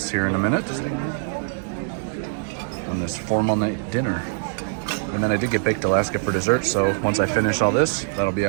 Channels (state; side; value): silent; left; digital silence